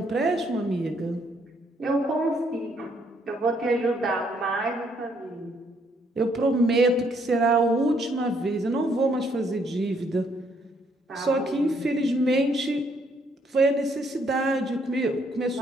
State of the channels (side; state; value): both; normal; correlation 0.69